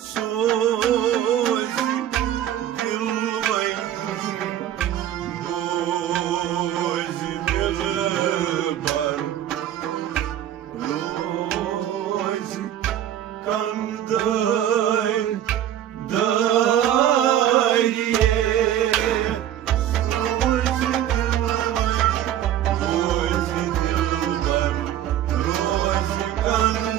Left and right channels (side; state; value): left; quieter; 11.3 dB